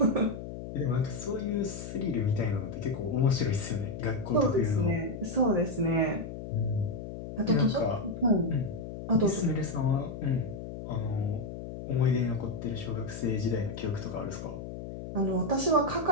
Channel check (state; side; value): noise; left; hum, 9 dB below the sound